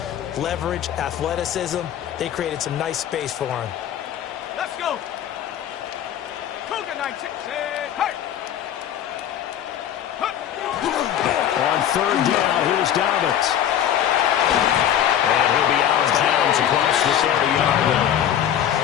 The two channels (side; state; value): right; quieter; 10.3 dB